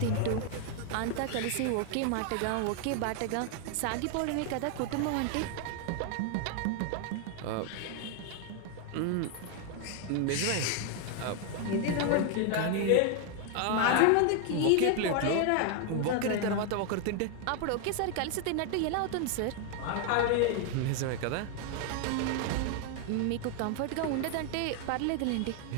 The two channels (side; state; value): both; different; correlation 0.00